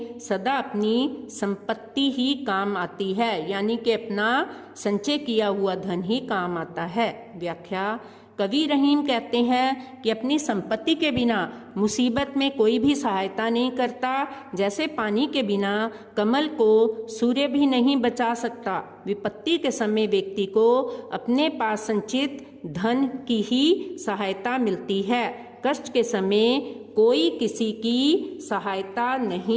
सदा अपनी संपत्ति ही काम आती है, यानी कि अपना संचय किया हुआ धन ही काम आता है। व्याख्या, कवि रहीम कहते हैं कि अपनी संपत्ति के बिना मुसीबत में कोई भी सहायता नहीं करता। जैसे पानी के बिना कमल को सूर्य भी नहीं बचा सकता, विपत्ति के समय व्यक्ति को अपने पास संचित धन की ही सहायता मिलती है। कष्ट के समय कोई किसी की सहायता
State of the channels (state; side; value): identical; both; correlation 1.00